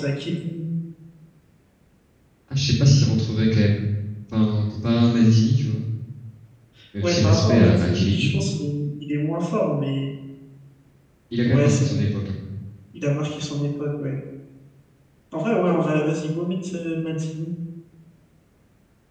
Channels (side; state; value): both; identical; correlation 1.00